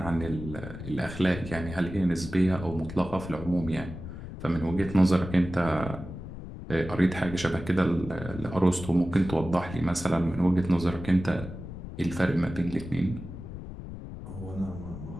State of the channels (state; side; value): noise; left; rumble, 10 dB below the sound